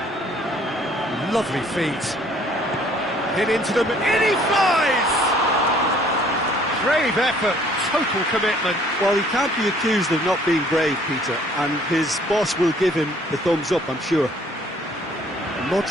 Lovely feet. Hit into them, in he flies! Brave effort, total commitment. Well, he can't be accused of not being brave, Peter, and his boss will give him the thumbs up, I'm sure. And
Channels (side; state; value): both; normal; correlation 0.58